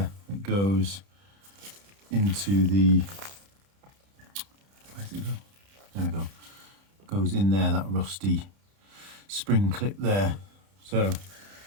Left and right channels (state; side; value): late; left; 30 ms